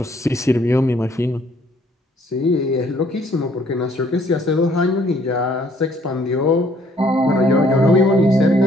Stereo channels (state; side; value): normal; both; correlation 0.62